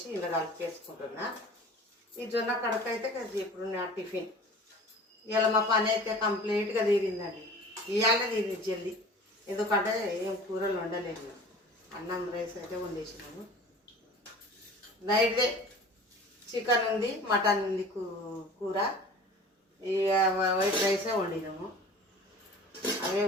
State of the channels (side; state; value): both; normal; correlation 0.42